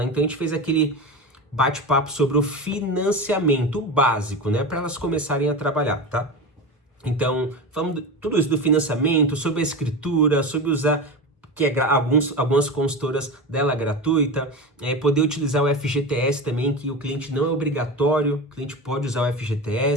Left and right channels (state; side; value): normal; both; correlation 0.24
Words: Então a gente fez aquele bate-papo sobre o financiamento básico, né, para elas começarem a trabalhar, tá? Então, falamos tudo isso do financiamento, sobre a escritura, sobre usar, que algumas consultoras dela gratuita, poder utilizar o FGTS também, que o cliente não é obrigatório, o cliente pode usar o